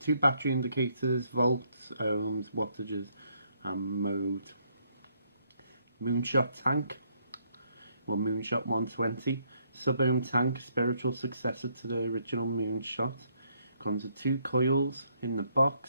battery indicators, volts, ohms, wattages and mode. Moonshot tank, or Moonshot 120, sub-ohm tank, spiritual successor to the original Moonshot. Comes with 2 coils in the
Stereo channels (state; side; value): inverted; both; correlation -0.71